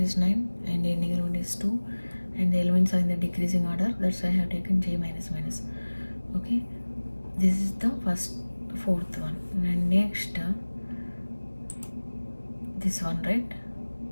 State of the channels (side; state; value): both; inverted; correlation -1.00